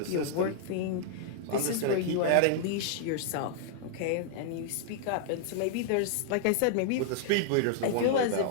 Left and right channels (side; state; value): both; different; correlation -0.01